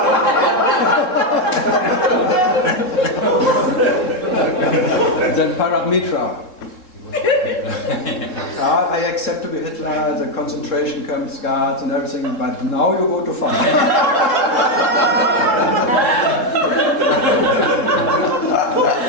Then Paramitra. I accept to be Hitler, the concentration camps, guards and everything, but now you go to fun.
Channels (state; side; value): late; right; 3.7 ms